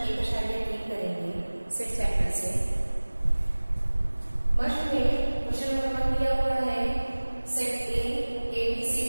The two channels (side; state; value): both; inverted; correlation -1.00